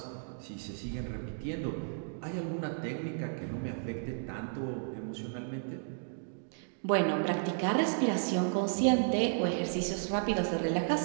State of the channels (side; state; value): left; silent; digital silence